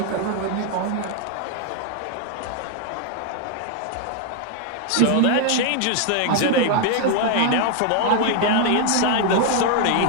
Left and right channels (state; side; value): different; both; correlation 0.00